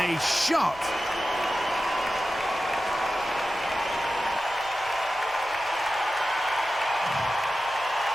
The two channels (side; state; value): right; noise; rumble, 24 dB below the sound